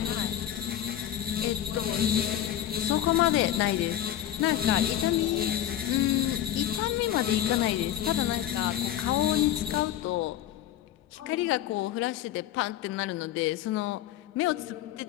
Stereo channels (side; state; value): right; quieter; 11.9 dB